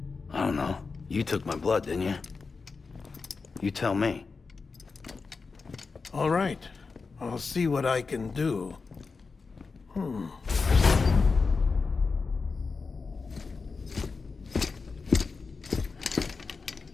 I don't know. You took my blood, didn't you? You tell me. All right. I'll see what I can do.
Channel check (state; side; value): quieter; right; 4.5 dB